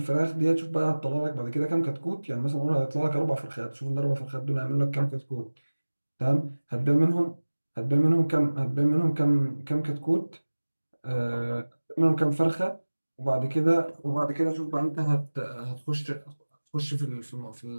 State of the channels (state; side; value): inverted; both; correlation -1.00